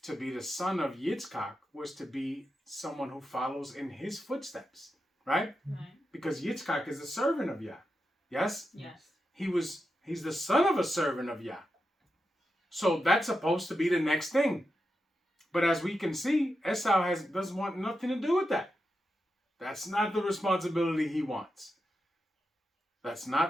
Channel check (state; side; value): normal; both; correlation 0.88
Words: to be the son of Yitzchak was to be someone who follows in his footsteps, right? Right. Because Yitzchak is a servant of Yah. Yes? Yes. He's the son of a servant of Yah. So that's supposed to be the next thing. But as we can see, Esau doesn't want nothing to do with that. That's not the responsibility he wants. That's